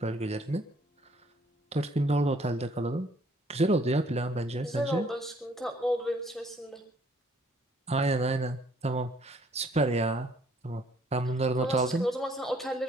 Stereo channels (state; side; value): normal; both; correlation 0.62